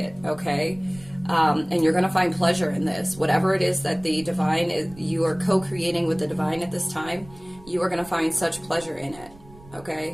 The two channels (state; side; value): noise; right; rumble, 21 dB below the sound